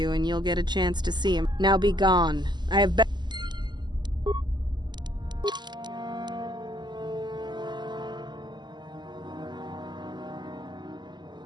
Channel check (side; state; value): left; late; 0.21 ms